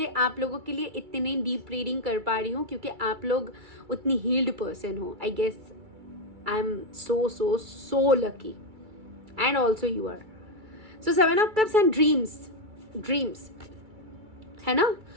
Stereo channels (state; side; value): late; left; 2.3 ms